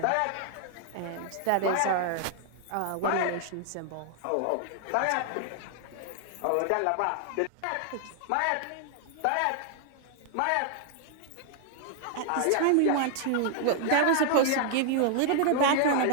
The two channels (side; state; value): both; different; correlation 0.00